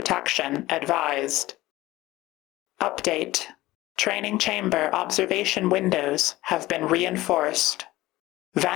advised. Update. Training chamber observation windows have been reinforced.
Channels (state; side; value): quieter; right; 17.8 dB